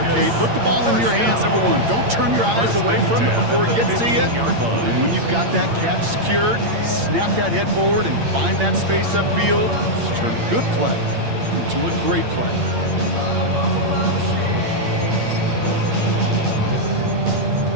Kate. Put the ball in your hands, number one. Don't turn your eyes away from it before it gets to you. And when you've got that catch secured, snap that head forward and find that space upfield. Just turn a good play into a great play.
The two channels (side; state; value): left; late; 8.7 ms